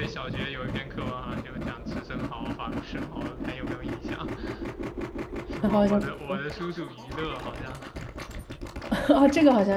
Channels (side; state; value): both; identical; correlation 1.00